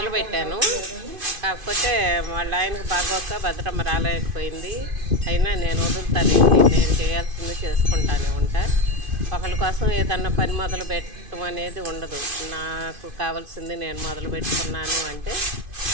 పెట్టాను. కాకపోతే వాళ్ళ ఆయనకు బాగోక భద్రమ్మ రాలేకపోయింది. అయినా నేను వదులుతానండి, నేను చేయాల్సింది చేసుకుంటానే ఉంటా. ఒకరి కోసం ఏదన్నా పని మొదలు పెట్టడం అనేది ఉండదు. నాకు కావాల్సింది నేను మొదలు పెట్టుకున్నాను అంటే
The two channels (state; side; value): late; left; 2.5 ms